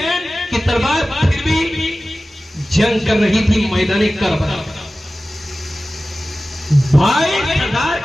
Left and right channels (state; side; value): normal; both; correlation 0.96